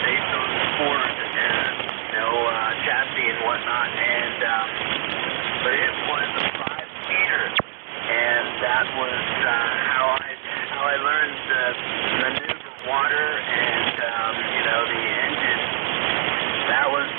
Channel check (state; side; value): silent; left; digital silence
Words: based on Ford and chassis and whatnot, and but it was a 5-seater, and that was how I learned to maneuver water and the engine. That was